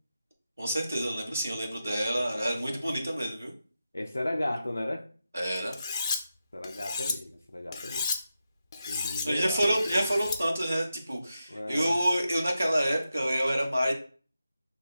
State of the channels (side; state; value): both; inverted; correlation -0.89